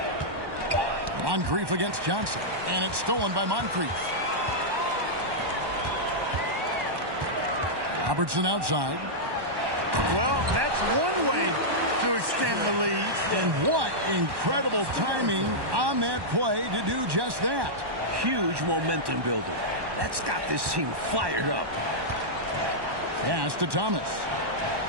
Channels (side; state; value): left; late; 1.1 ms